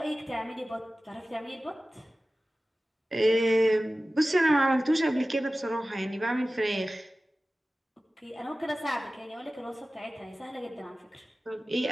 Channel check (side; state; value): both; normal; correlation 0.96